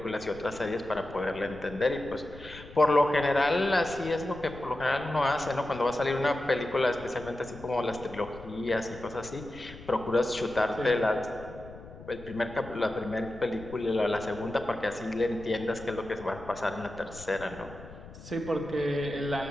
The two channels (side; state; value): left; noise; rumble, 16 dB below the sound